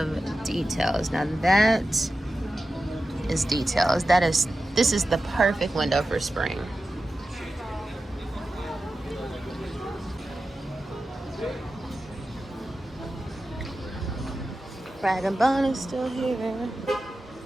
details. Now that is details. This is the perfect window for spring. Rag and Bone is still here.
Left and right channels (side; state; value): both; normal; correlation 0.93